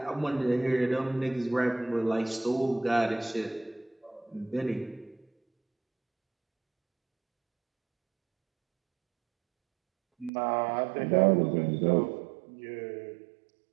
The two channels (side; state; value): left; drops out; at 10.3 s